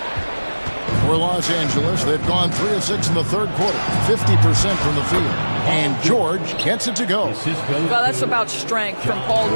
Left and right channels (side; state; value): both; inverted; correlation -1.00